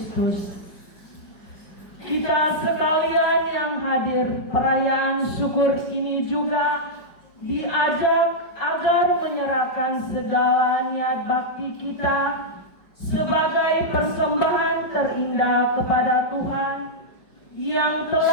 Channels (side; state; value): right; late; 5.1 ms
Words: Kita sekalian yang hadir perayaan syukur ini juga diajak agar menyerahkan segala niat bakti kita sebagai persembahan terindah kepada Tuhan yang